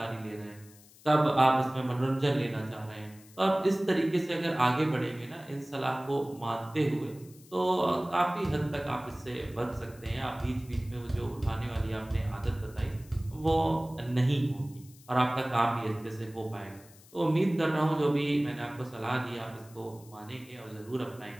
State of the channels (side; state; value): left; noise; hiss, 24 dB below the sound